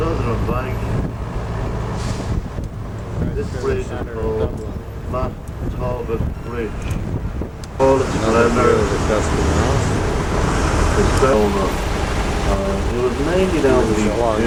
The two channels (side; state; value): both; identical; correlation 1.00